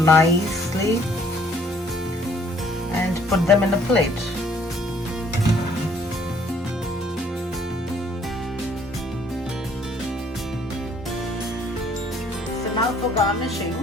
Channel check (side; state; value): both; normal; correlation 0.61